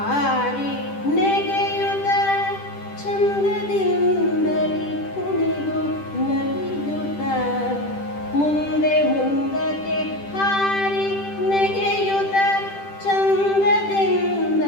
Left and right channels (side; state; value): right; late; 10 ms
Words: ನೆಗೆಯುತ್ತ ಚಂದದಿಂದಲಿ ಕುಣಿದು ನಲಿಯುತ್ತ ಮುಂದೆ ಮುಂದಕ್ಕೆ ಹಾರಿ ನೆಗೆಯುತ್ತ